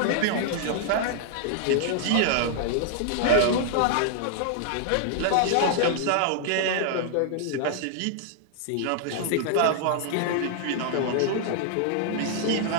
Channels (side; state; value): both; different; correlation -0.01